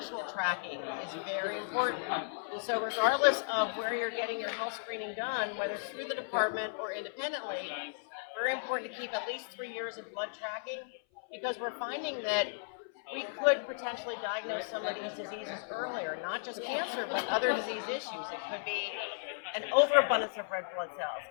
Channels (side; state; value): right; silent; 54 dB below the other